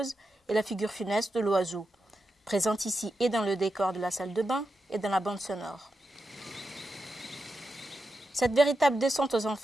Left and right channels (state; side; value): normal; both; correlation 0.88